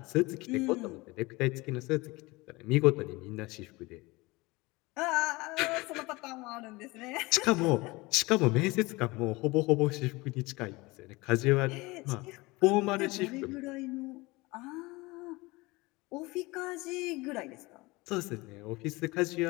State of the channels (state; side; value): quieter; right; 22.9 dB